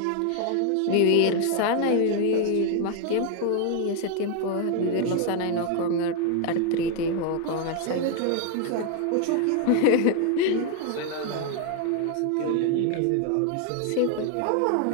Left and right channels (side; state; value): both; different; correlation 0.01